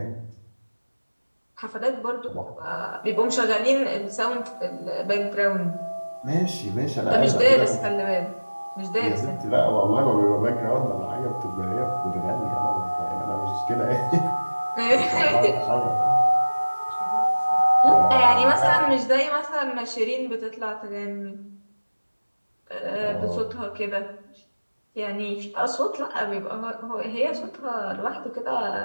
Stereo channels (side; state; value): both; inverted; correlation -1.00